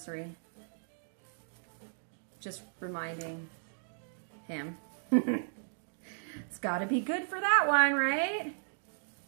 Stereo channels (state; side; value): silent; left; digital silence